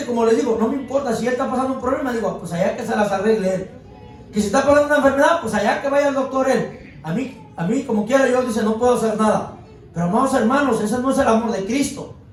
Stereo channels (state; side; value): identical; both; correlation 1.00